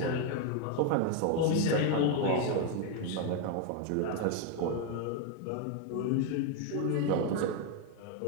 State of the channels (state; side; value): different; both; correlation 0.01